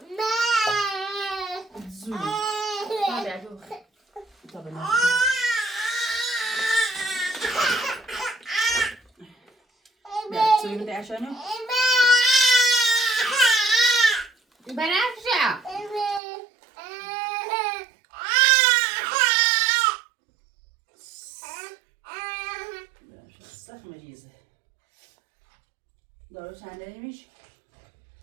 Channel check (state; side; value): drops out; left; at 16.2 s